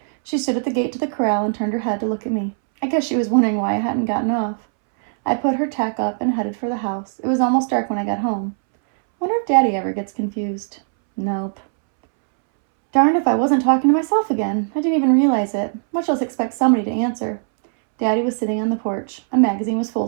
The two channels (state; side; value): silent; left; 66 dB below the other